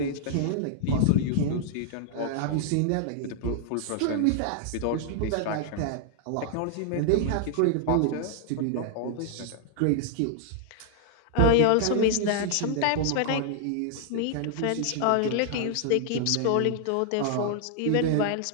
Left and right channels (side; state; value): both; different; correlation -0.01